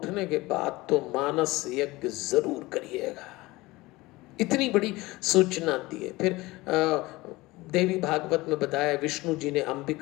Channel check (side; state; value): right; quieter; 20.6 dB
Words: के बाद तो मानस यज्ञ जरूर करिएगा। इतनी बड़ी सूचना दी है। फिर देवी भागवत में बताया, विष्णु जी ने